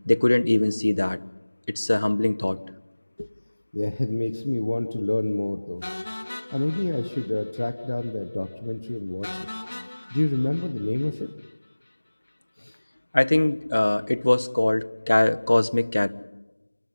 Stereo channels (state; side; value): inverted; both; correlation -1.00